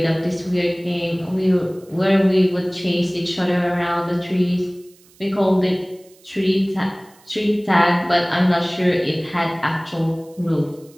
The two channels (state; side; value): noise; right; hiss, 28 dB below the sound